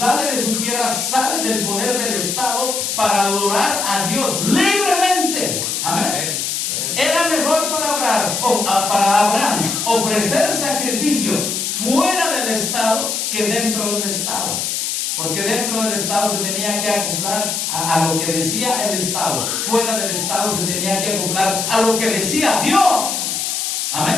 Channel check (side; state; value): left; noise; hiss, 1 dB below the sound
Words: de su tierra, sale del poder del Estado para adorar a Dios libremente. Amén. Era mejor para Abraham ofrecer sacrificio fuera del Estado que dentro del Estado. Porque dentro del Estado se tenía que acoplar a lo que decía el Estado. Fuera del Estado se tenía que acoplar a lo que decía Dios.